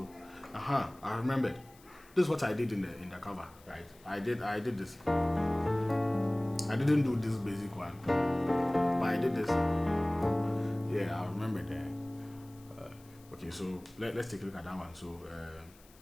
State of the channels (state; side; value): noise; left; hiss, 26 dB below the sound